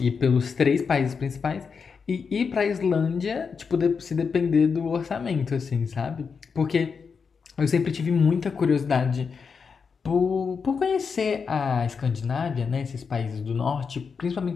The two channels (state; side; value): quieter; right; 5.7 dB